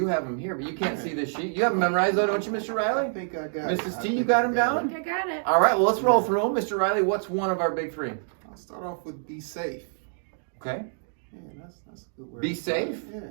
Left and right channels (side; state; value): left; silent; digital silence